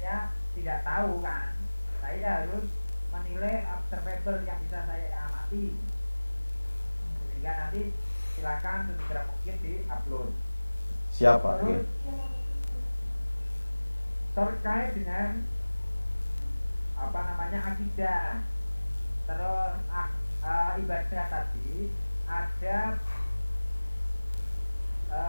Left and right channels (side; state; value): both; inverted; correlation -1.00